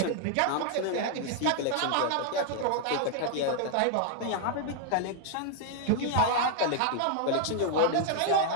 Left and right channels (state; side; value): different; both; correlation 0.00